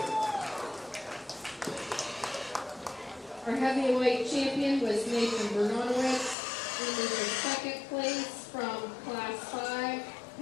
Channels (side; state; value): right; drops out; at 6.4 s